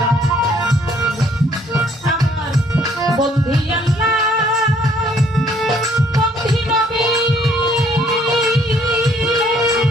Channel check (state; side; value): normal; both; correlation 0.63